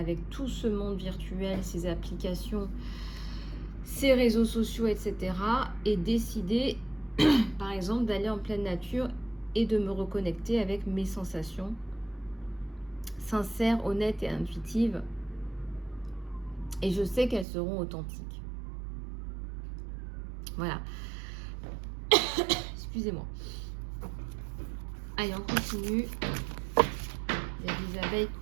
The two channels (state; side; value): drops out; left; at 17.4 s